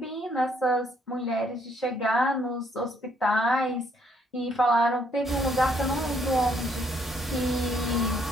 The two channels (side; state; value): both; normal; correlation 0.69